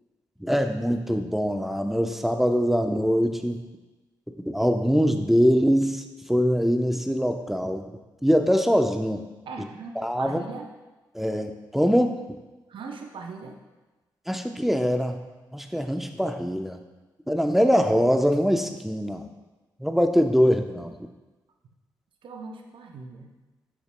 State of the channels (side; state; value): both; normal; correlation 0.96